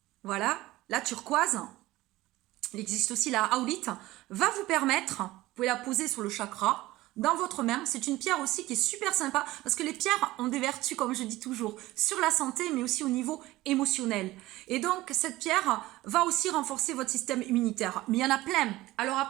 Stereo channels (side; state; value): left; quieter; 17.8 dB